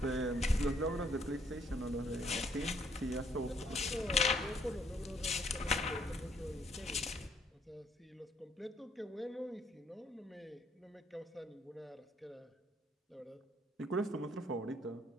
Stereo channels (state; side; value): normal; both; correlation 0.68